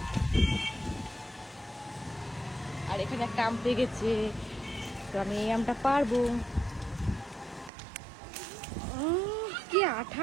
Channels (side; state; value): left; drops out; at 7.7 s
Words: আর এখানে একটা আম পেকেছে, তো আমি এই আমটা পারবো। কি